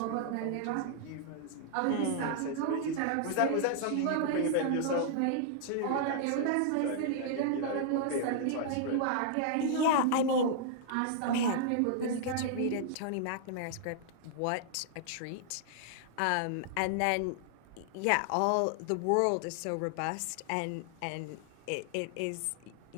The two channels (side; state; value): both; different; correlation -0.01